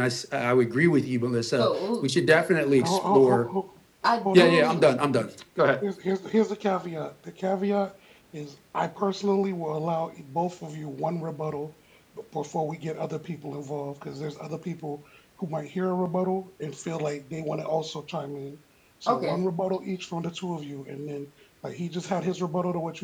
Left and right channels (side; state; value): both; identical; correlation 1.00